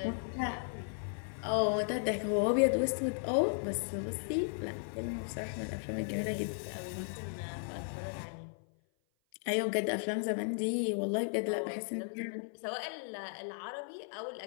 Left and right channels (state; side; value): silent; right; 54 dB below the other